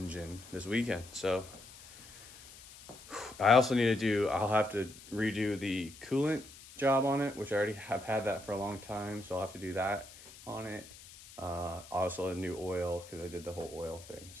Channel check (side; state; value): left; noise; hiss, 18 dB below the sound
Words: this weekend. So I also need to I'll have to redo the coolant job on it, which I already have had that for a long time, so I'll have to do that on it. Also a new oil, because I did the whole oil thing.